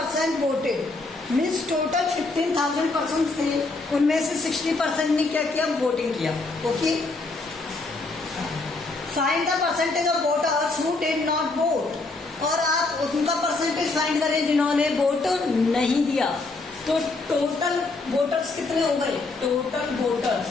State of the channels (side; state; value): right; quieter; 3.4 dB